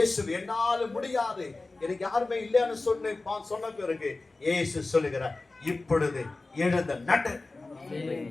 என்னால முடியாது, எனக்கு யாருமே இல்லைன்னு சொன்ன பிறகு இயேசு சொல்லுகிறார், இப்பொழுது எழுந்த நடு,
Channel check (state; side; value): quieter; right; 3.3 dB